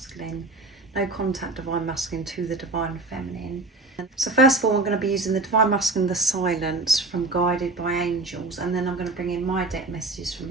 no contact divine masculine to the divine feminine. So first of all, I'm going to be using the divine masculine, the silence from Guided by Angels, and then I'm going to bring in my deck messages from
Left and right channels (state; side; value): quieter; left; 3.2 dB